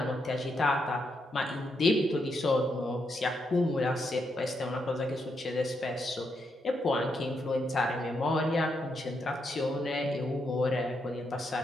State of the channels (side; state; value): both; normal; correlation 0.80